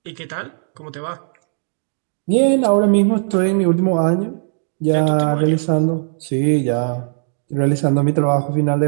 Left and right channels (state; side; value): silent; left; digital silence